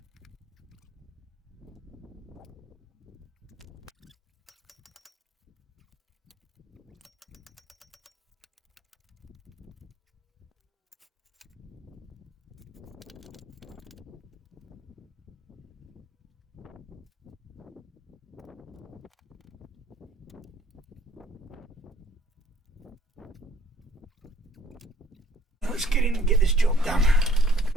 Let's get in and get this job done.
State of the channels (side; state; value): both; normal; correlation 0.59